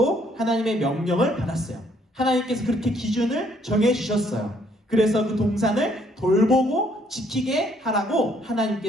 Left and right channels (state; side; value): normal; both; correlation 0.66